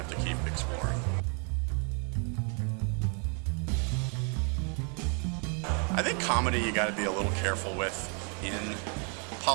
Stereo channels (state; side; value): quieter; left; 38.4 dB